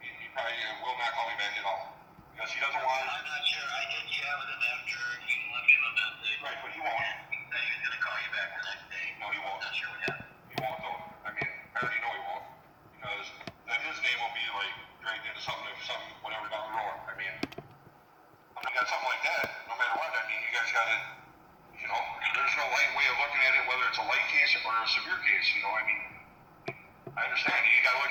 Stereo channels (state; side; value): identical; both; correlation 1.00